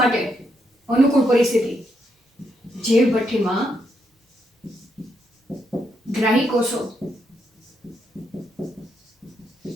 માટે. અનુકૂળ પરિસ્થિતિ જૈવ ભઠ્ઠીમાં ગ્રાહી કોષો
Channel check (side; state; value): both; normal; correlation 0.79